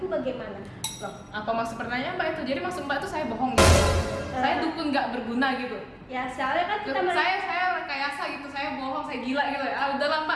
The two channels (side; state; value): both; identical; correlation 1.00